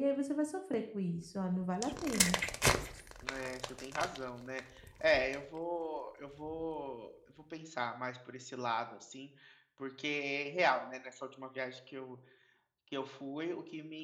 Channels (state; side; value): identical; both; correlation 1.00